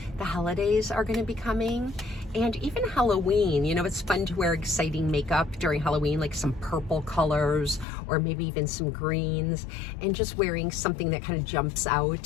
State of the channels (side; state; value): right; drops out; at 7.9 s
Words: the holidays are going to be coming, and even Halloween. You know, it's fun to wear exciting makeup during Halloween, like some purple colors or maybe even some greens, and just wearing something that kind of jumps out